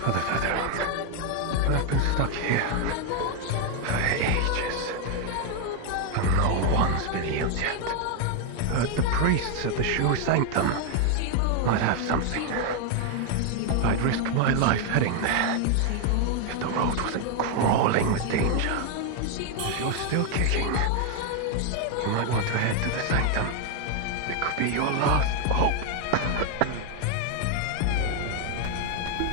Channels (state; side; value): different; both; correlation 0.01